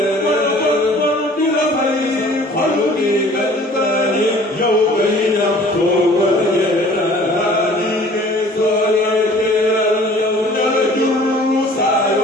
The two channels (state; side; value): normal; both; correlation 0.50